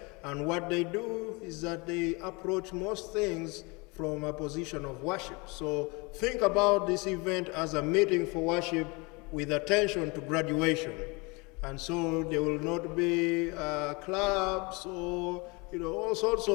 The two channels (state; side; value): quieter; right; 27.7 dB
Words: And what they do is that they approach most things from a position of worship. So think about this event as a meeting for worship with attention to graduation. And so there will not be clubs or all sorts